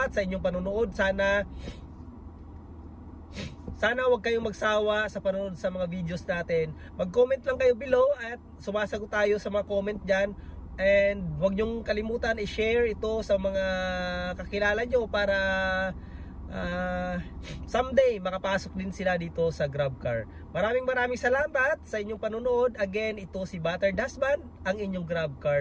sa inyong panunood. Sana wag kayong magsawa sa panonood sa mga videos natin. Mag-comment lang kayo below at sumasagot tayo sa mga comment dyan. And huwag nyong kalimutan i-share ito sa mga kakilala nyo para someday makapasok din sila dito sa GrabCar. Maraming salamat sa inyong panunood. Again, ito si Battered Husband, ang inyong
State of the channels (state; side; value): identical; both; correlation 1.00